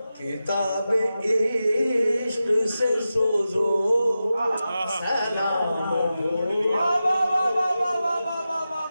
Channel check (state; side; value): inverted; both; correlation -0.92